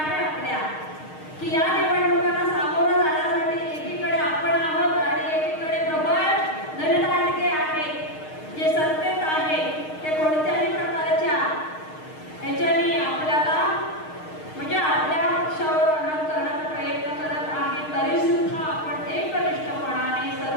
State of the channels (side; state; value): right; late; 6.5 ms